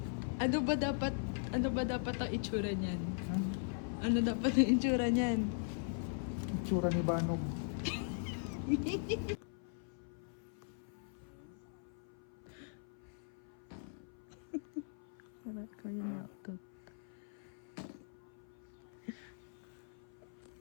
Ano ba dapat ang itsura niyan? Hmm? Ano dapat ang itsura niyan? Itsura ni Banog. Parang ko yun naktot.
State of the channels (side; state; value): right; silent; 51 dB below the other